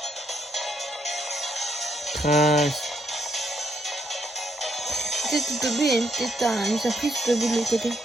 Trace. Peut-être que Toby a peut-être une surprise de l'autre côté.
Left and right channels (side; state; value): both; normal; correlation 0.75